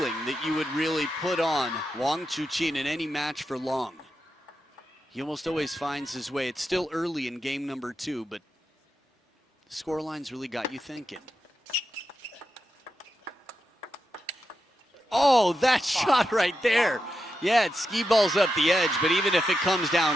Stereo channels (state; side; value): normal; both; correlation 0.88